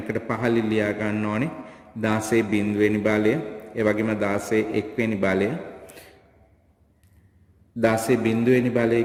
පහලින් ලියා ගන්න ඕනේ. 16 බිඳුවෙනි බලය ඒ වගේම 16 එක්වෙනි බලය 16 බිඳුවෙනි බලය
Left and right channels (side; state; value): both; identical; correlation 1.00